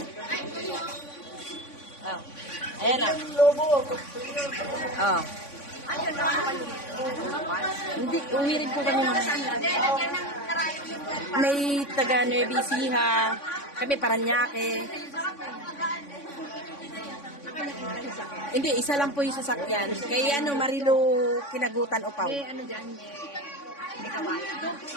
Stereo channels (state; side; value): late; right; 3.5 ms